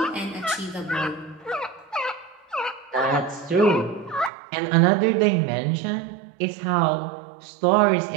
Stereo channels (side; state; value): left; drops out; at 4.3 s